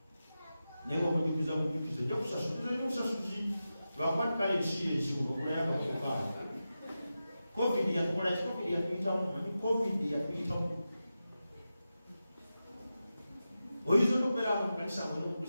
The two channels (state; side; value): inverted; both; correlation -0.92